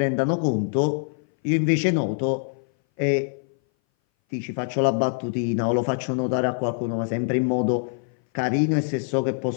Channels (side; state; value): right; silent; 60 dB below the other